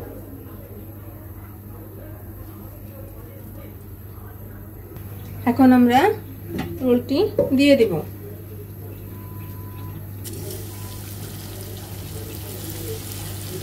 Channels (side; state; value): both; identical; correlation 1.00